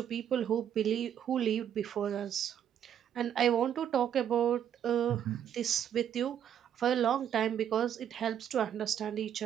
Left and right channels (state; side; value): quieter; left; 9.5 dB